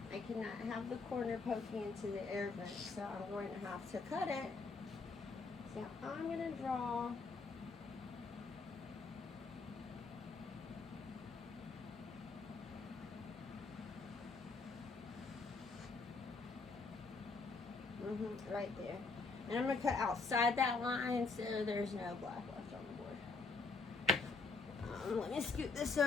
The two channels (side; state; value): right; quieter; 4.2 dB